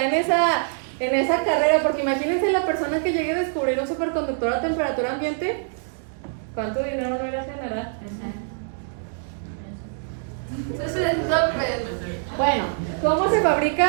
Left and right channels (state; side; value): silent; left; digital silence